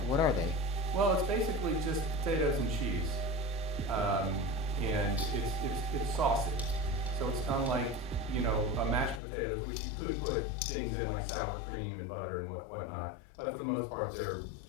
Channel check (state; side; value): drops out; right; at 9.2 s